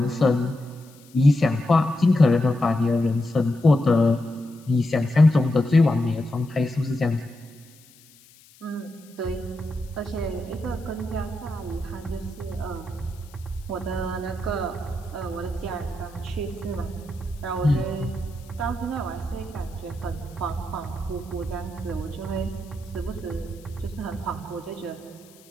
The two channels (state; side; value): noise; left; hiss, 26 dB below the sound